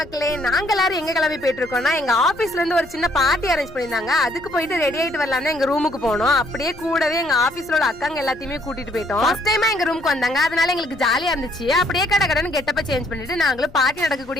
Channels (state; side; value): noise; left; rumble, 20 dB below the sound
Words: நாங்க எல்லாரும் எங்க கிளம்பி போயிட்டு இருக்கோம்னா, எங்க ஆபீஸ்ல இருந்து ஒரு சின்ன பார்ட்டி அரேஞ்ச் பண்ணிருந்தாங்க. அதுக்கு போயிட்டு ரெடி ஆயிட்டு வரலாம் எங்க ரூமுக்கு போனோம். அப்படியே கூடவே எங்க ஆபீஸ்ல உள்ள அக்காங்க எல்லாத்தையுமே கூட்டிட்டு போயிட்டோம். ஃபர்ஸ்ட் டைமா எங்க ரூமுக்கு வந்தாங்க, அதனால எங்களுக்கு ஜாலியா இருந்துச்சு. அப்படியே கடகடன்னு கெட்டப்ப சேஞ்ச் பண்ணிட்டு நாங்களும் பார்ட்டி